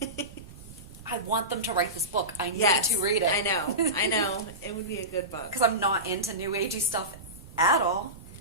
I want them to write this book. I need to read it. I know. It would be a good book. Because I'm not into New Agey stuff at all.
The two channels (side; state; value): right; noise; rumble, 17 dB below the sound